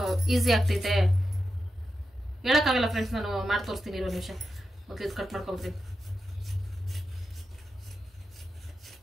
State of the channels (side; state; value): both; normal; correlation 0.89